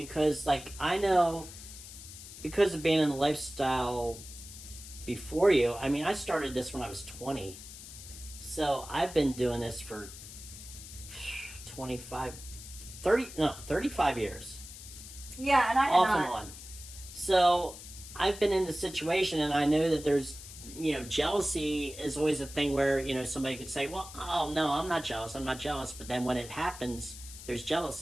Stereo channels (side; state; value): left; noise; hiss, 14 dB below the sound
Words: like, I know because of being in the lifestyle before you. I mean, I started this when I was 20. So I've been doing this for 35 years. Yeah, and I had Off not. and on. So I've been in the situation and I know that there's, jealousy is always a thing where, somebody could say, well, oh, no, I'm not jealous. But then when it happens, there's